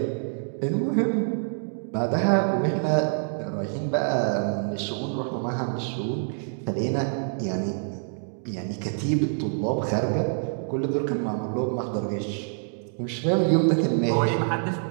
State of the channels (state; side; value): silent; left; digital silence